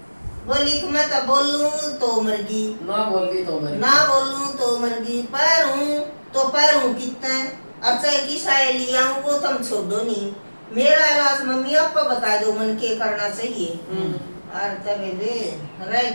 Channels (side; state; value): both; inverted; correlation -1.00